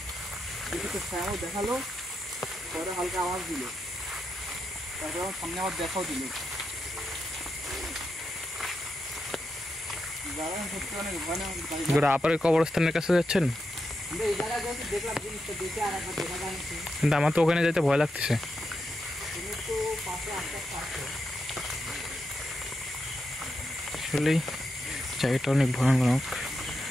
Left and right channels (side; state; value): both; normal; correlation 0.86